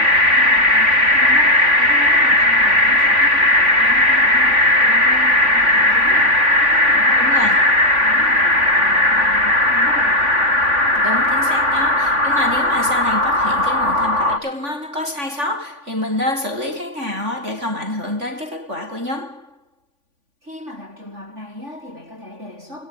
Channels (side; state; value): left; late; 3.5 ms